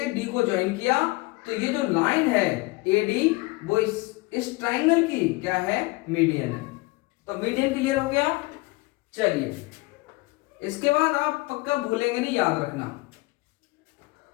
D को ज्वाइन किया तो ये जो लाइन है AD वो इस ट्राइंगल की क्या है, मीडियन है। तो मीडियन क्लियर हो गया। चलिए इसके बाद आप पक्का भूलेंगे नहीं, याद रखना।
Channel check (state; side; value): quieter; right; 23.5 dB